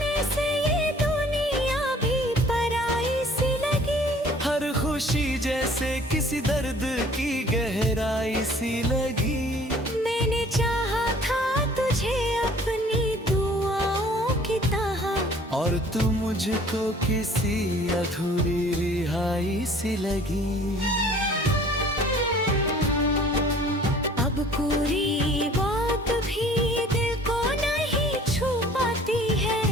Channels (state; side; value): normal; both; correlation 0.52